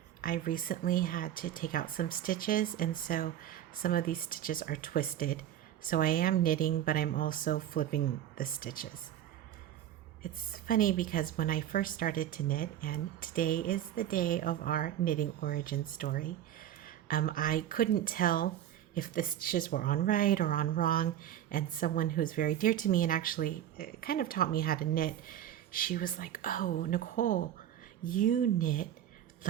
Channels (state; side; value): quieter; left; 11.3 dB